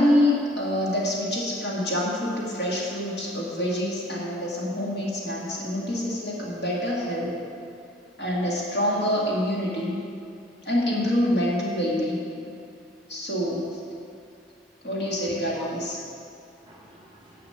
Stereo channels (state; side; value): normal; both; correlation 0.52